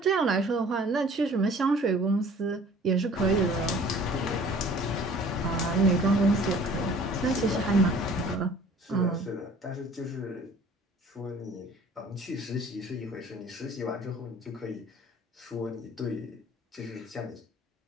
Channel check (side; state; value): both; normal; correlation 0.50